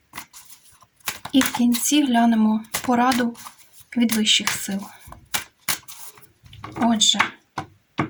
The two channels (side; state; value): both; identical; correlation 1.00